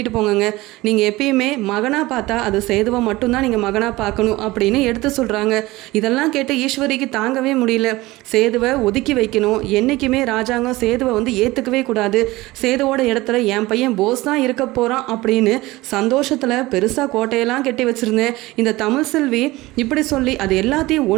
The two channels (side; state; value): left; quieter; 19.6 dB